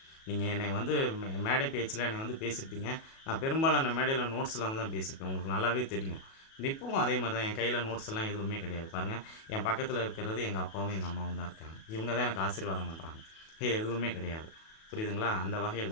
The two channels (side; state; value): right; late; 37 ms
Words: நீங்கள் என்னை மேடை பேச்சில் என்னை பேசியிருப்பீங்க. நான் பெரும்பாலான மேடையில் நோட்ஸ் இல்லாமல் தான் பேசியிருப்பேன், உங்களுக்கு நல்லாவே தெரியும். இப்போவும் அதே மாதிரி தான், என் கையில் நோட்ஸ் எல்லாம் எதுவுமே கிடையாது. பாருங்கள், என் பக்கத்தில் இருக்கிறது எங்கள் அப்பாவும் எங்கள் அம்மாவும் தான் இருக்காங்க. இவங்க தான் எனக்கு ஆசீர்வாதம் பண்ணுறாங்க. எதுவுமே கிடையாது, புரியுதுங்களா? அந்த